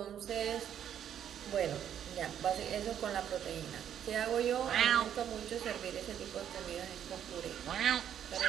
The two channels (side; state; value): left; quieter; 9.6 dB